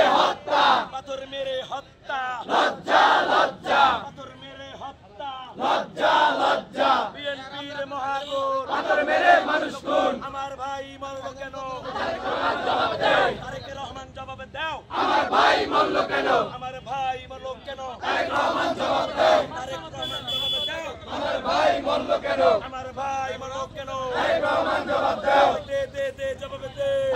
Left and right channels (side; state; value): both; identical; correlation 1.00